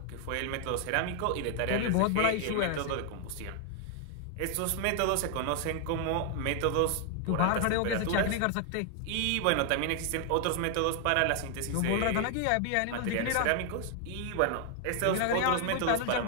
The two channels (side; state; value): both; different; correlation 0.00